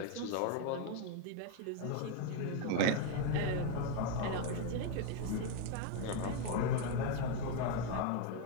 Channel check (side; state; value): both; different; correlation 0.01